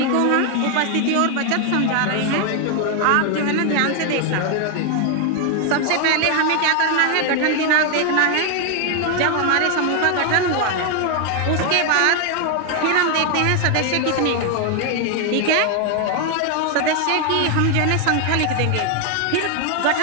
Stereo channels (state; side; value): different; both; correlation 0.00